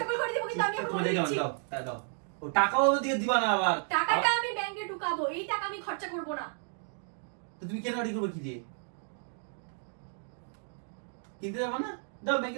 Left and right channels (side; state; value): left; silent; 56 dB below the other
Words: করে দিব, কিন্তু আমি এখন বলে দিচ্ছি দাও ও টাকাও দিয়ে দিবা না, আবার টাকাটা আমি ব্যাংকে ঢুকাবো, এই টাকা আমি খরচা করব না। তো তুমি কেন রেডি করবে? কি দিয়ে কিনতে যাবে না? দাও ব্যাংকে